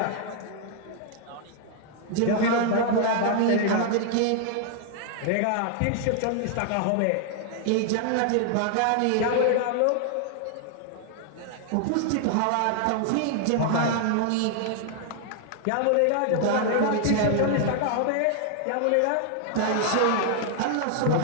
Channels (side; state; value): both; different; correlation 0.00